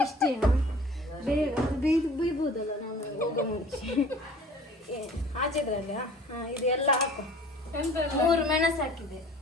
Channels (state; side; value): normal; both; correlation 0.47